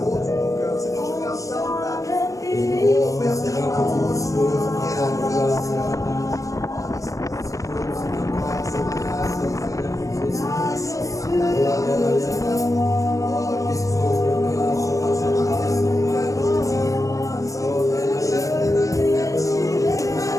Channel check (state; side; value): late; right; 0.16 ms